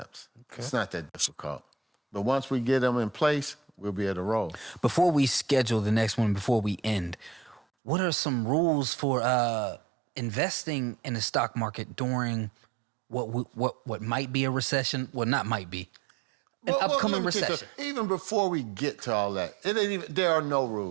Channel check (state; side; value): drops out; left; at 7.6 s